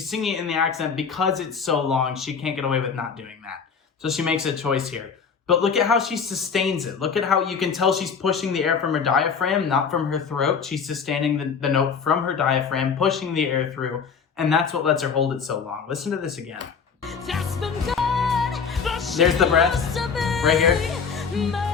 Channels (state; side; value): quieter; right; 6.1 dB